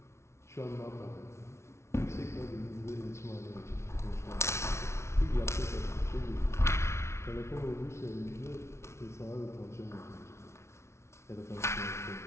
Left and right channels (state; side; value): late; right; 0.13 ms